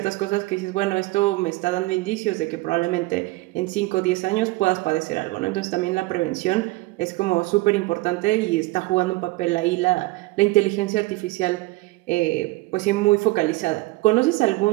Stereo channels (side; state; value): left; quieter; 21.0 dB